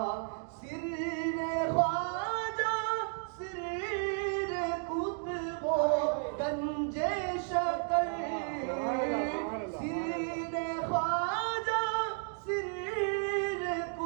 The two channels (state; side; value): silent; left; 56 dB below the other